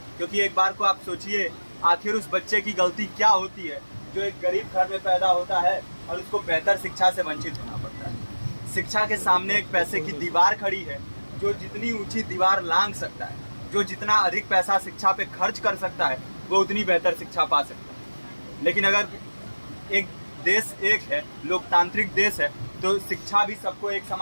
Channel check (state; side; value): inverted; both; correlation -1.00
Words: क्योंकि एक बार को आप सोचिए, आखिर उस बच्चे की गलती क्या होती है जो एक गरीब घर में पैदा होता है और उसको बेहतर शिक्षा से वंचित होना पड़ता है। शिक्षा के सामने एक पैसे की दीवार खड़ी है, जो जितनी ऊंची दीवार लांघ सकता है, जो जितना अधिक पैसा शिक्षा पे खर्च कर सकता है, वो उतनी बेहतर शिक्षा पा सकता है। लेकिन अगर एक देश एक है, लोकतांत्रिक देश है, तो शिक्षा भी सबको एक